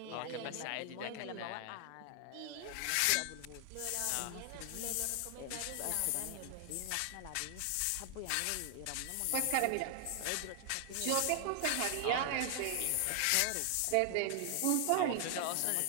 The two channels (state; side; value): different; both; correlation 0.00